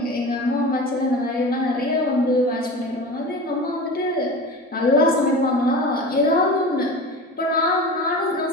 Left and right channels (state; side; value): normal; both; correlation 0.32